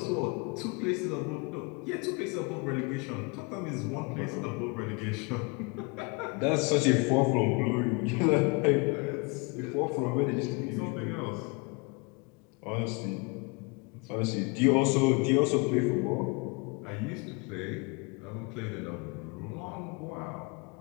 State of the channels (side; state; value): right; quieter; 30.1 dB